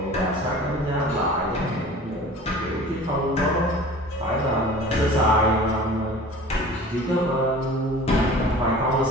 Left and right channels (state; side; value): normal; both; correlation 0.42